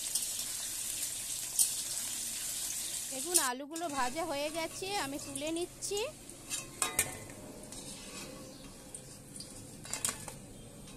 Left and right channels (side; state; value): both; identical; correlation 1.00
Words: দেখুন আলুগুলো ভাজা হয়ে গেছে, আমি তুলে নিচ্ছি।